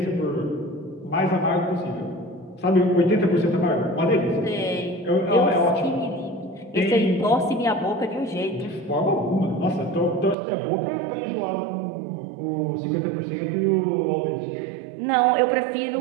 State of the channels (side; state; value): left; drops out; at 10.4 s